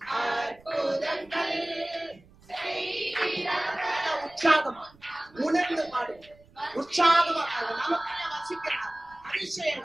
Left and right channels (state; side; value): noise; right; rumble, 27 dB below the sound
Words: அற்புதங்கள் செய்கிறவர். உற்சாகமா உணர்ந்து பாடுங்க. உற்சாகமா நமக்கு வசிக்கிறார்.